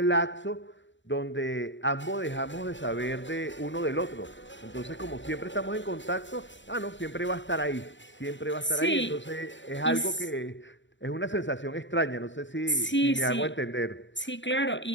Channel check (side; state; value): right; late; 0.54 ms